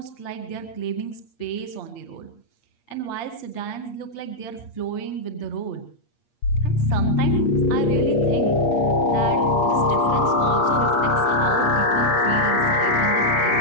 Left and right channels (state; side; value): late; right; 8.5 ms